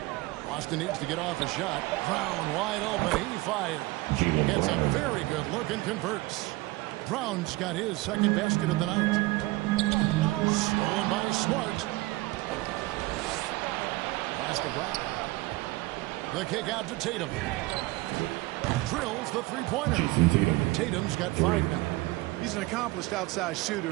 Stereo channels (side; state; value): left; quieter; 20.8 dB